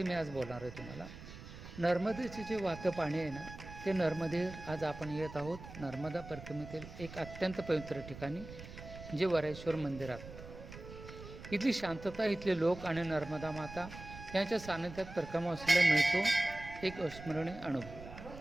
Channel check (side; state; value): right; noise; rumble, 13 dB below the sound